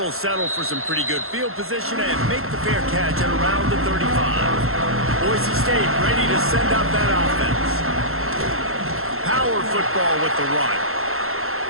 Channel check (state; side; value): late; left; 0.62 ms